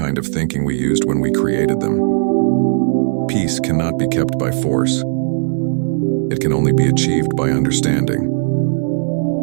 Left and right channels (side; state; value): left; silent; 58 dB below the other